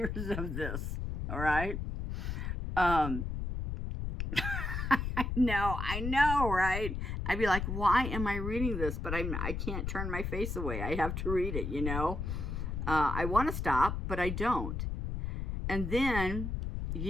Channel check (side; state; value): left; noise; rumble, 3 dB below the sound